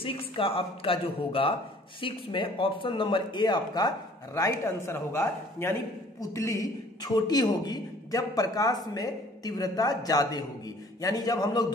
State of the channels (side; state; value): both; normal; correlation 0.54